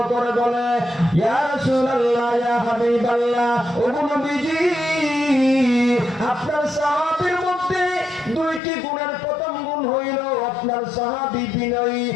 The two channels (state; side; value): drops out; right; at 8.6 s